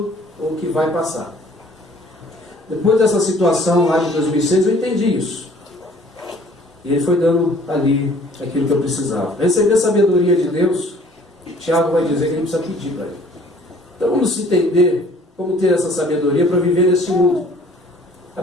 ou que vai passar. Depois dessa situação lá de 2006, eu entendi isso. E Ele foi dando ali aquilo que eu precisava. Receber a sabedoria de Deus, Tiago vai dizer que a gente precisa pedir para Ele. Então vamos entender como ter essa sabedoria para viver nesse mundo. A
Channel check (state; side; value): normal; both; correlation 0.55